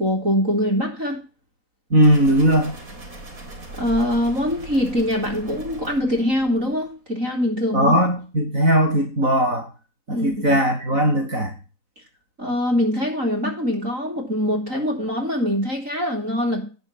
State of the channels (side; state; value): left; late; 4.2 ms